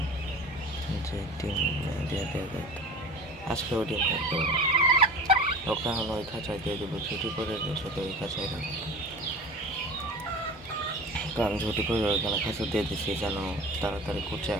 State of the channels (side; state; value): both; normal; correlation 0.36